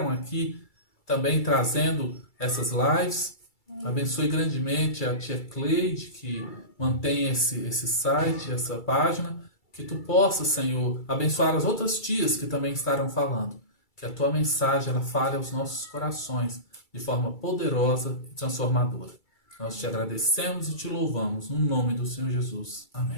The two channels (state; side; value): late; right; 2.3 ms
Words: aqui também trazendo essas lives. Abençoe grandemente a tia Cleide, que mantém esse site, essa página. Que tu possa, Senhor, abençoar as outras tias que também estarão falando. Que a tua mensagem ela fale aos nossos corações de forma poderosa e transformadora. Nós te agradecemos e te louvamos no nome do Senhor Jesus.